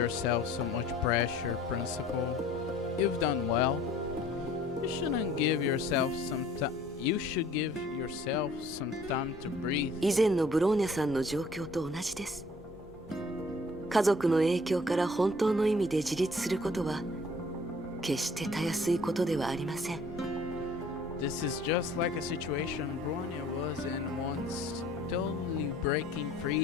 so much pressure, Principal. You've done well. You shouldn't give yourself some time. You should give yourself some time to breathe. 以前のブローニャさんの状況と同じです。家族の影響から本当の意味で自立することは決してたやすいことではありません。This is just like a situation Bronya was in once, totally breaking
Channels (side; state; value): both; normal; correlation 0.54